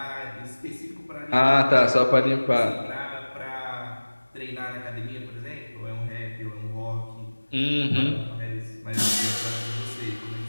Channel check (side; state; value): both; inverted; correlation -1.00